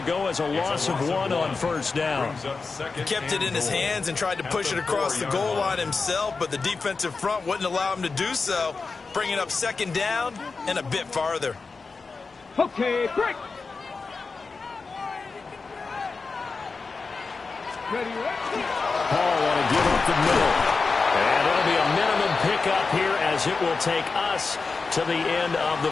go as a loss of 1 on 1st down. He kept it in his hands and tried to push it across the goal line himself, but the defensive front wouldn't allow him to do so, bringing up 2nd down and a bit farther. Okay, break. Ready? Paul want to give up the middle. And it'll be a minimum pickup here as it will take us to the end of the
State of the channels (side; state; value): right; quieter; 4.4 dB